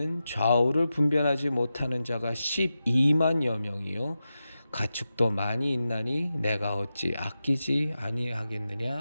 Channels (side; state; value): both; inverted; correlation -0.92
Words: 좌우를 분별하지 못하는 자가 12만여 명이요 가축도 많이 있나니 내가 어찌 아끼지